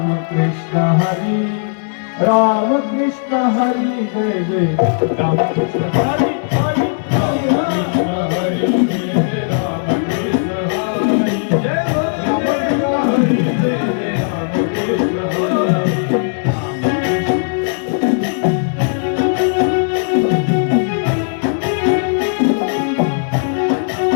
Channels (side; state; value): right; silent; 64 dB below the other